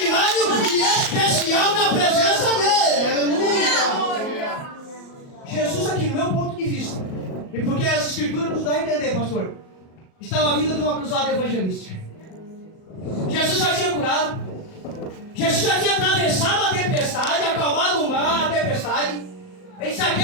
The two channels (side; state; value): right; late; 38 ms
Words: e especial na presença dele. Aleluia. Jesus aqui, no meu ponto de vista, e porque as escrituras nos dão a entender, pastor, estava vindo de uma cruzada evangelística. Jesus já tinha curado. Jesus já tinha atravessado a tempestade, acalmado o mar, a tempestade. Ele se